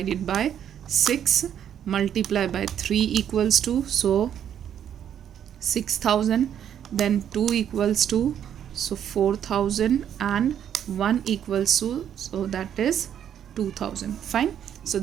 by 6, multiply by 3 equals to, so 6,000, then 2 equals to, so 4,000, and 1 equals to, so that is 2,000. Fine. So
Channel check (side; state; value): left; quieter; 9.5 dB